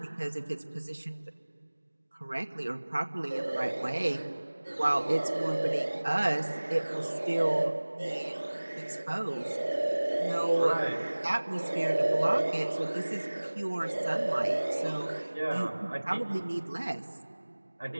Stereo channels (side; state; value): both; inverted; correlation -1.00